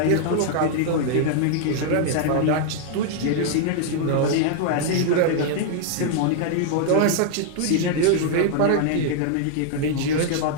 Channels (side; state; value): both; different; correlation 0.00